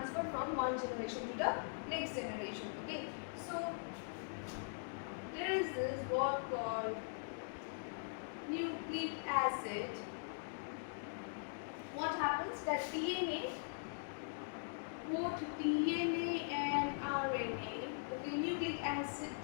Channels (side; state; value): right; silent; digital silence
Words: from one generation to the next generation. Okay, so there is this word called nucleic acid. What happens that DNA, both DNA and RNA, okay, nucleic acid